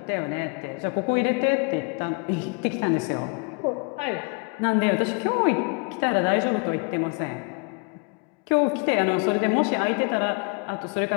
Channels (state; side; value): quieter; right; 33.4 dB